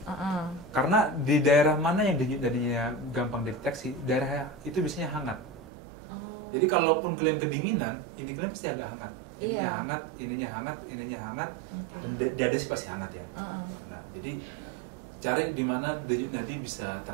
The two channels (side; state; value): left; drops out; at 5.7 s